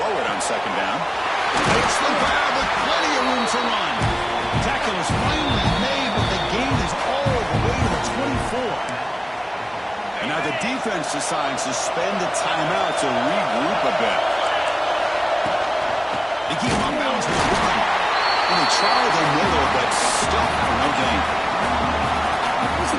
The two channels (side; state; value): both; identical; correlation 1.00